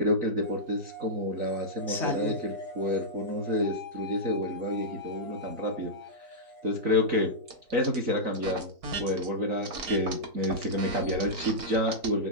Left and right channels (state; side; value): late; left; 3.2 ms